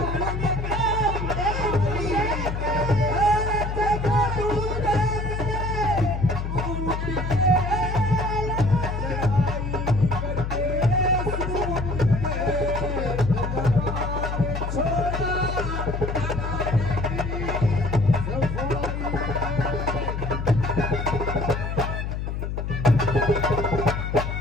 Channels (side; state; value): left; noise; hum, 3 dB below the sound